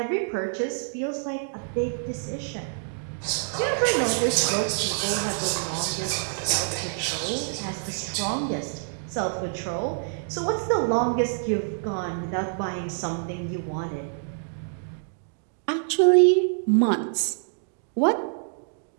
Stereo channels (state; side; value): silent; left; digital silence